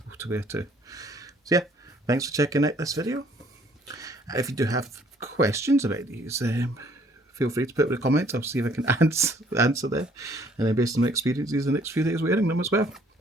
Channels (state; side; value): normal; both; correlation 0.61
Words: to wear too. So yeah, thanks for checking out this video. If you do have questions about these, feel free to put it in the comments. I'll see if I can answer them. And then based on my experiences the next few days wearing them as well.